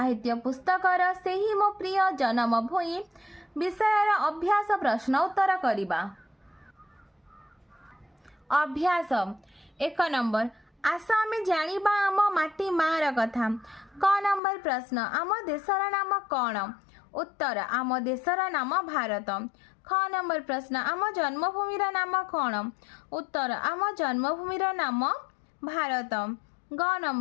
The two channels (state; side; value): drops out; right; at 14.4 s